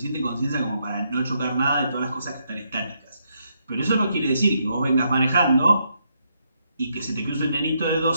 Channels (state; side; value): inverted; both; correlation -0.77